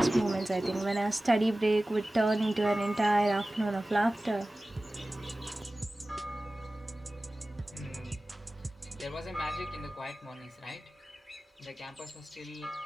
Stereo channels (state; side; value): normal; both; correlation 0.97